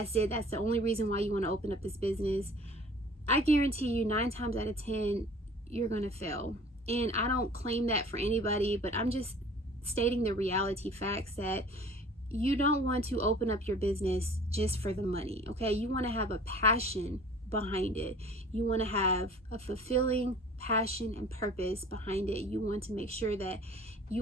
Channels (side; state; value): both; normal; correlation 0.48